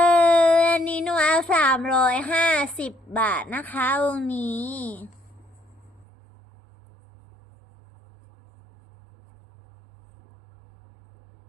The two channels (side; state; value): left; drops out; at 6.1 s